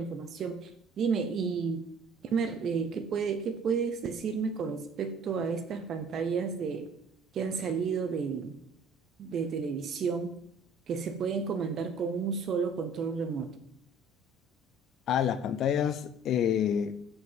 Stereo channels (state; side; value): normal; both; correlation 0.51